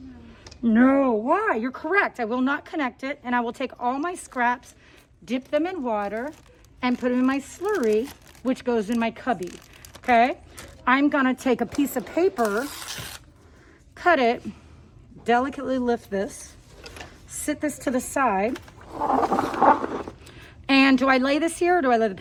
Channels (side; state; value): both; identical; correlation 1.00